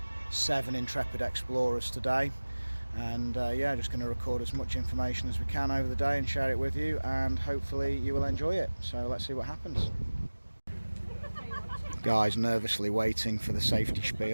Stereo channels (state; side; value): inverted; both; correlation -1.00